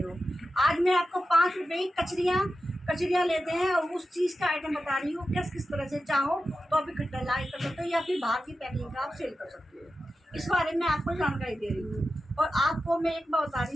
हो। आज मैं आपको 5 रुपए की कचरियाँ लेते हैं और उस चीज़ का आइटम बता रही हूँ। किस तरह से चाहो तो आप इकट्ठा लाई कर सकते हो या फिर बाहर की पैकिंग का आप सेल कर सकते हो। इस बारे में आपको जानकारी दे रही हूँ और आपको मैं एक बात बता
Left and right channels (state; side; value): normal; both; correlation 0.92